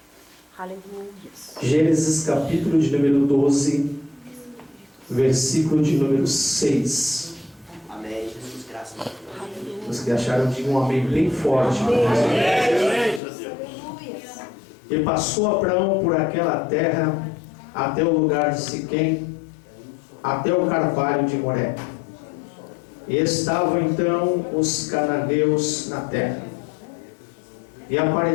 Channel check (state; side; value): drops out; right; at 13.2 s